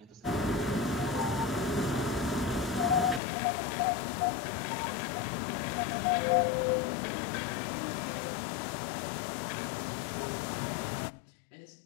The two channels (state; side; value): drops out; right; at 3.2 s